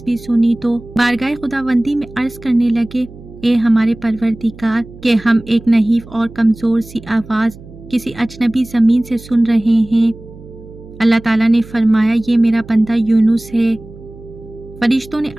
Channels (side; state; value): right; noise; hum, 19 dB below the sound